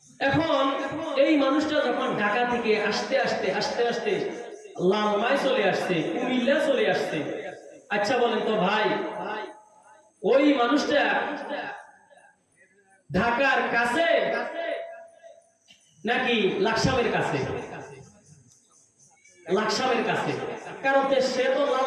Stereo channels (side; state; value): both; identical; correlation 1.00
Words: এখন এই মানুষটা যখন ঢাকা থেকে আস্তে আস্তে আস্তে আস্তে লালমাই চলে আসছে, কুমিল্লা চলে আসছে। আচ্ছা বলেন তো ভাই, ওই মানুষটা ঢাকার কাছে নাকি লাকসামের কাছে? লাকসামের কাছে, কারণ সে তো